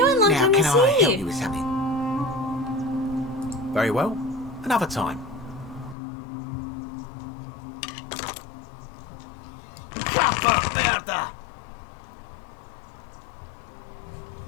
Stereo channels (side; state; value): right; drops out; at 6.0 s